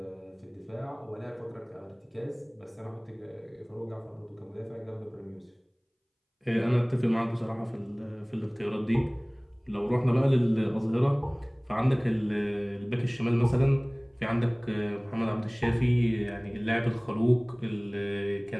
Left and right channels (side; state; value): both; identical; correlation 1.00